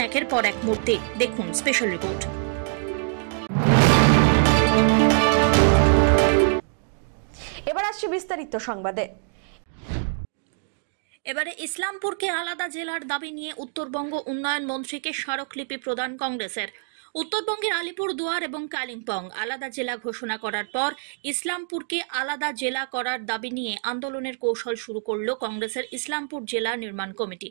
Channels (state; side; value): silent; left; 62 dB below the other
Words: একের পর এক মূর্তি। দেখুন স্পেশাল রিপোর্ট। এবার আসছে বিস্তারিত সংবাদে। এবারে ইসলামপুরকে আলাদা জেলার দাবি নিয়ে উত্তরবঙ্গ উন্নয়ন মন্ত্রীকে স্মারকলিপি প্রদান কংগ্রেসের। উত্তরবঙ্গের আলিপুরদুয়ার এবং কালিম্পং আলাদা জেলা ঘোষণা করার পর ইসলামপুরকে আলাদা জেলা করার দাবি নিয়ে আন্দোলনের কৌশল শুরু করল কংগ্রেসের ইসলামপুর জেলা নির্মাণ কমিটি।